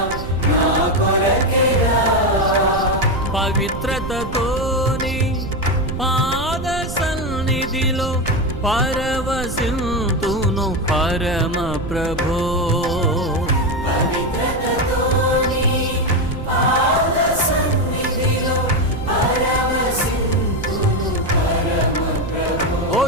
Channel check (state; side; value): noise; right; rumble, 8 dB below the sound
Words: నా కొరకేగా. పవిత్రతతోని పాద సన్నిధిలో పరవశింతును పరమ ప్రభో. పవిత్రతతోని పాద సన్నిధిలో పరవశింతును పరమ ప్రభో.